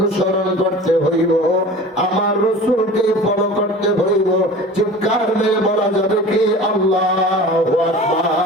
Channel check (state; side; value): normal; both; correlation 0.39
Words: করতে হইব, আমার রাসূলকে ফলো করতে হইব। চিৎকার মেরে বলা যাবে কি আল্লাহু